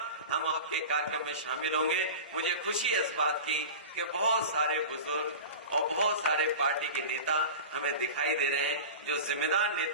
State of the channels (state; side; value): inverted; both; correlation -0.31